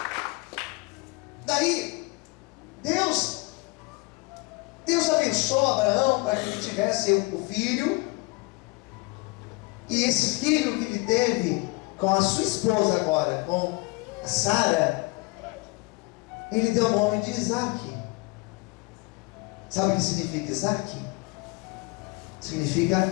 Daí, Deus abençoou Abraão para que ele tivesse o filho, e esse filho que ele teve com a sua esposa agora, com a Sara, ele deu o nome de Isaac. Sabe o que significa Isaac?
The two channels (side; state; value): right; quieter; 26.1 dB